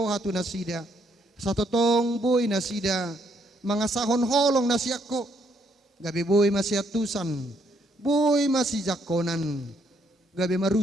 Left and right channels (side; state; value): both; normal; correlation 0.71